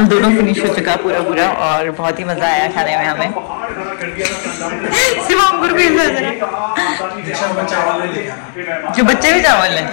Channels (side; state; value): right; silent; digital silence